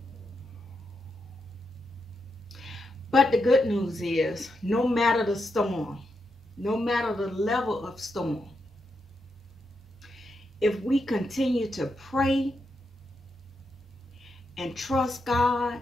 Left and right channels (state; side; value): normal; both; correlation 0.84